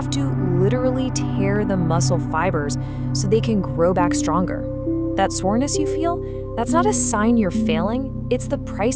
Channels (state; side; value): identical; both; correlation 1.00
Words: to literally tear the muscle fibers so they can grow back stronger. That soreness you feel, that's not a sign you're failing, it's the